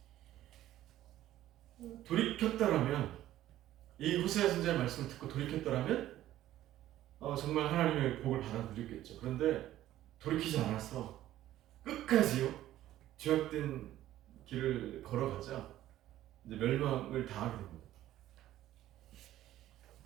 돌이켰다라면, 이 호세아 선지자의 말씀을 듣고 돌이켰다라면 정말 하나님의 복을 받아들였겠죠. 그런데 돌이키지 않아서 끝까지요, 죄악된 길을 걸어가자 이제 멸망을 당하게 됩니다.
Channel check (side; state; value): left; quieter; 13.6 dB